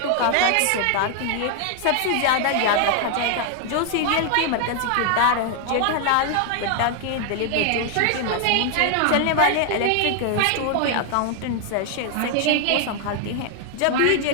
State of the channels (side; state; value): both; different; correlation 0.00